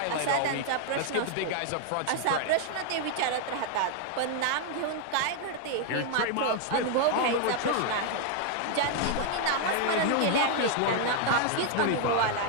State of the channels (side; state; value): both; different; correlation 0.00